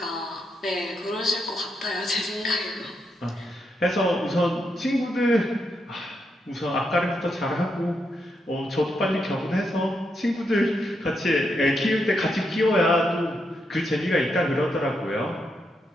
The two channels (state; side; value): normal; both; correlation 0.82